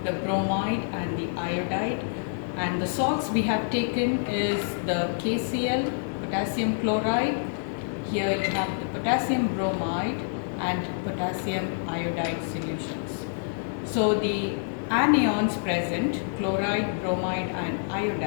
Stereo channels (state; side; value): silent; right; 60 dB below the other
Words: the bromide and the iodide. And the salts we have taken is the KCl, potassium chloride. Here you have the potassium bromide and potassium iodide solutions. So the anions present, chloride, bromide and